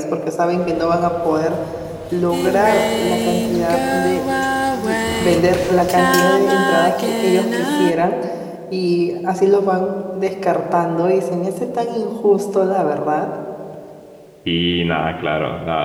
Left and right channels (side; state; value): both; identical; correlation 1.00